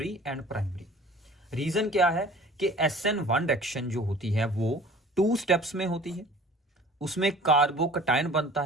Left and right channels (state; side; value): normal; both; correlation 0.46